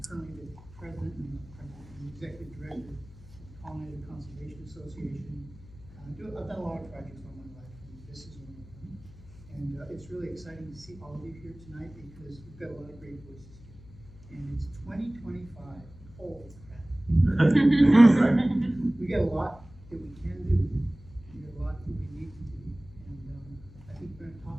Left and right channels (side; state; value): left; noise; hum, 20 dB below the sound